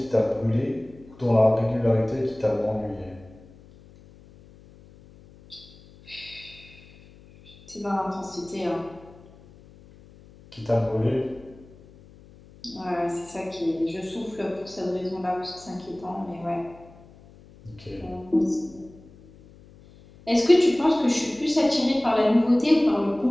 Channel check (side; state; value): left; noise; hum, 23 dB below the sound